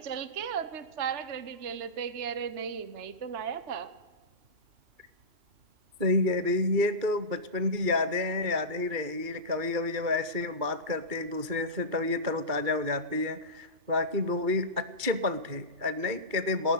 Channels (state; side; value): late; left; 2.3 ms